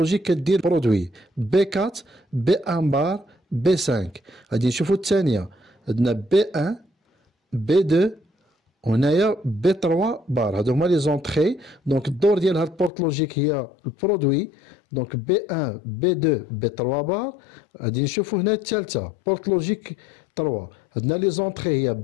كدير برودوي بي 4 بي 1 بار بي 5. غادي نشوفوا الثانيه عندنا بي 1 بي 2 وهنايا بي 3 بار. هادو هما لي زونطري. دونك الدور ديال هاد البورت لوجيك هي البرودوي. دونك بي 1 بي 2 بي 3 بار. غادي نشوفوا هنا الثالثه بورت لوجيك 3. عندنا لي زونطري هي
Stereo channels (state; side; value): drops out; right; at 12.9 s